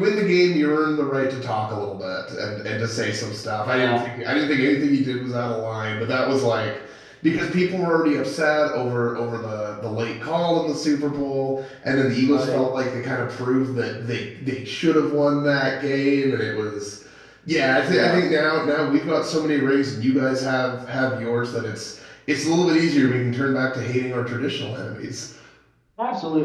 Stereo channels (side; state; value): both; identical; correlation 1.00